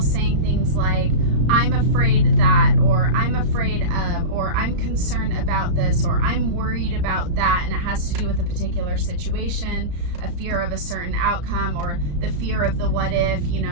saying things like, I'm afraid that, or I'm afraid of, or I'm concerned about this, or I'm worried about that, and it has to do with a particular situation, a fear of a certain outcome, or the fear of the what if, you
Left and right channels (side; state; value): left; late; 34 ms